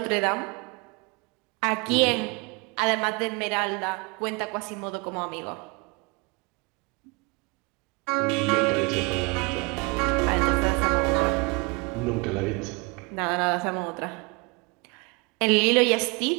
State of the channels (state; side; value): quieter; left; 28.5 dB